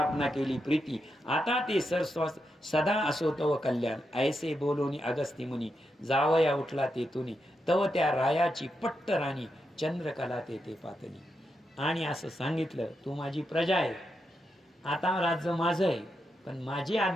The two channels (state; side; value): normal; both; correlation 0.85